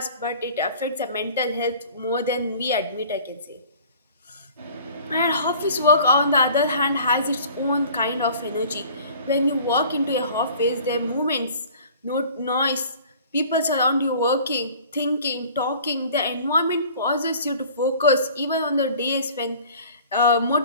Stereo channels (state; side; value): inverted; both; correlation -0.48